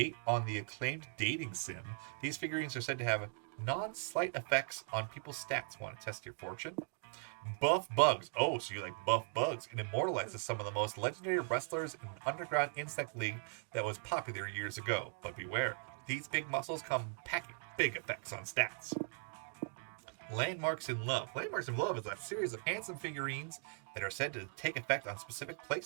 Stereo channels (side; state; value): left; silent; 52 dB below the other